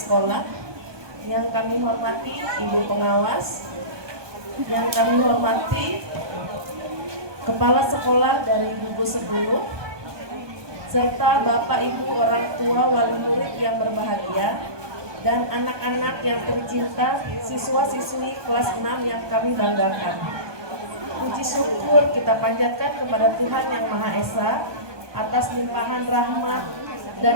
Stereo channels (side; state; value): left; late; 1.2 ms